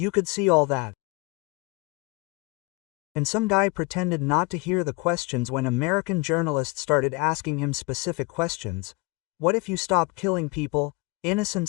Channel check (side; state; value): right; quieter; 26.2 dB